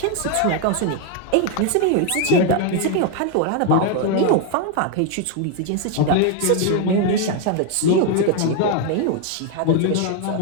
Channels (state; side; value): different; both; correlation 0.01